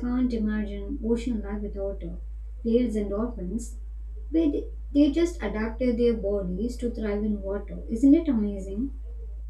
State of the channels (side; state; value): both; identical; correlation 1.00